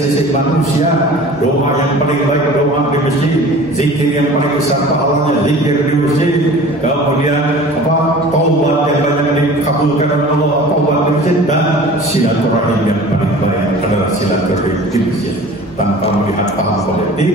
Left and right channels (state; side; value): normal; both; correlation 0.42